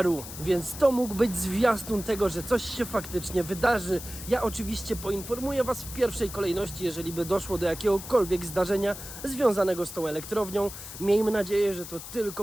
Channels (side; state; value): left; noise; hiss, 11 dB below the sound